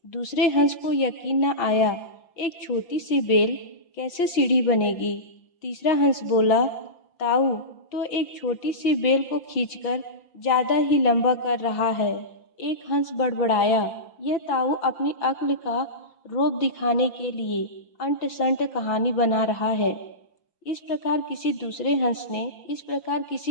दूसरे हंस को यकीन न आया, एक छोटी सी बेल कैसे सीढ़ी बनेगी? तीसरा हंस बोला, ताऊ तो एक छोटी सी बेल को खींचकर ज्यादा ही लंबा कर रहा है। एक हंस बड़बड़ाया, यह ताऊ अपनी अक्ल का रोब दिखाने के लिए अंट संट कहानी बना रहा है। इस प्रकार किसी दूसरे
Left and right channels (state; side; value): late; right; 5.9 ms